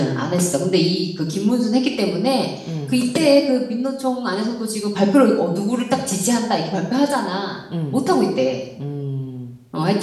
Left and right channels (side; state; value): both; identical; correlation 1.00